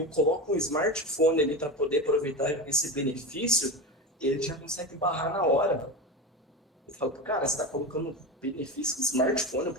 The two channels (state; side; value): normal; both; correlation 0.22